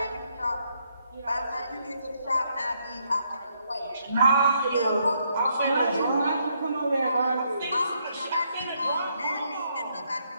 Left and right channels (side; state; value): both; inverted; correlation -0.74